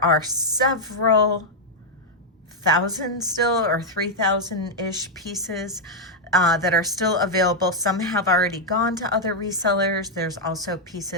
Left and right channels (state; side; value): normal; both; correlation -0.01